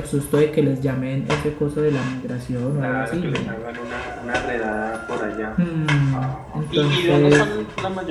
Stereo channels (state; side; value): identical; both; correlation 1.00